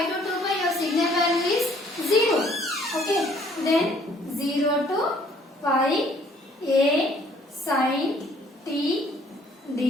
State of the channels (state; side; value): normal; both; correlation 0.60